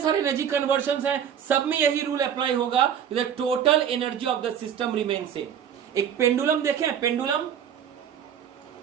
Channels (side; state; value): left; quieter; 8.7 dB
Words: एनर्जी कन्वर्शंस हैं सब में यही रूल अप्लाई होगा, the total energy of the system remain same. एक पेंडुलम देखें, pendulum